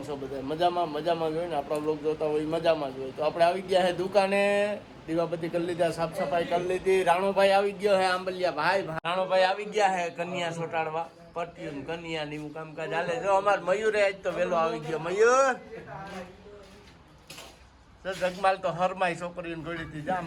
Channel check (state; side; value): identical; both; correlation 1.00